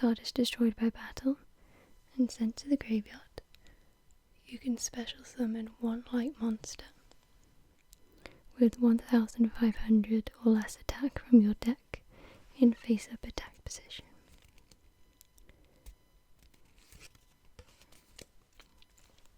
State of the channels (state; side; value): identical; both; correlation 1.00